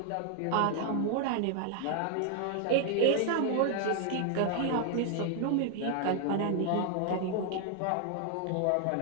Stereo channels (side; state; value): both; different; correlation 0.00